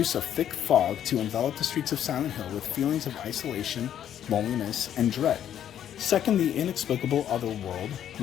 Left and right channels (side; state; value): right; quieter; 10.2 dB